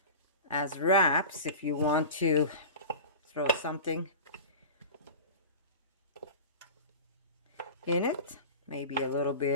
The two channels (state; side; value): inverted; both; correlation -0.32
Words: as wraps if you want to throw something in it, maybe a little